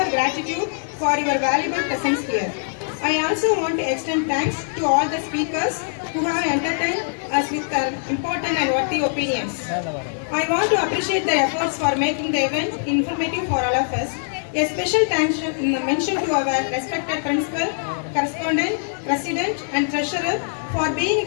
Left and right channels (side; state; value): right; silent; digital silence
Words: gratitude for your valuable presence here. I also want to extend thanks to all the speakers who have entertained us with their important and worthy opinions. I want to appreciate their efforts for making the event informative for all of us. A special thanks mention to our respected principal, correspondent, president and treasurer for being